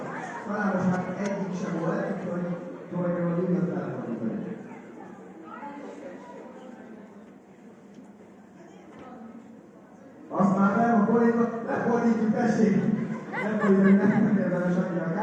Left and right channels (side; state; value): both; identical; correlation 1.00